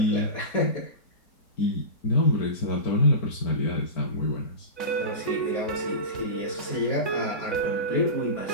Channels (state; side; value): late; right; 4.2 ms